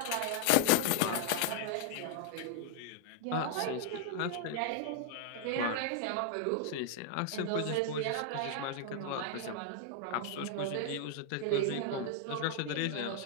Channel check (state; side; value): different; both; correlation 0.00